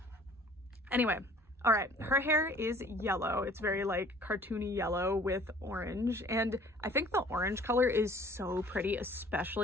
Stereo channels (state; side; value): normal; both; correlation 0.52